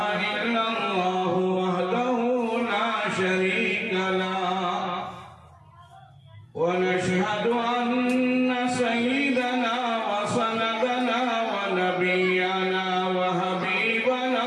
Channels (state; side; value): identical; both; correlation 1.00